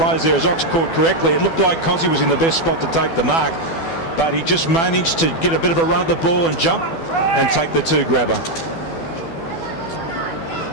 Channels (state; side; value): late; right; 12 ms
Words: there, as Ox caught correctly. It looked like Cozzy was in the best spot to take the mark, but he just managed to get a bit of a run at the ball and jump and take the 2 grabber.